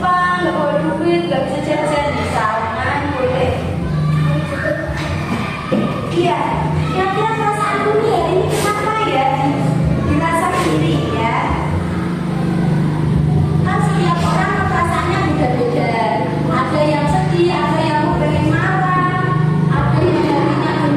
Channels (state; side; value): identical; both; correlation 1.00